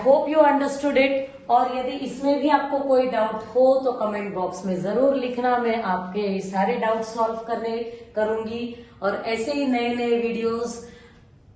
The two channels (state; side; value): identical; both; correlation 1.00